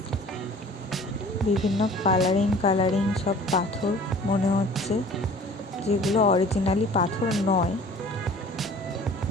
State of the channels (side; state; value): both; normal; correlation 0.47